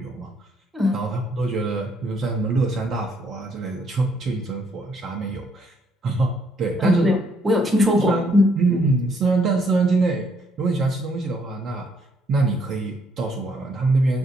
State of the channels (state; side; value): normal; both; correlation 0.69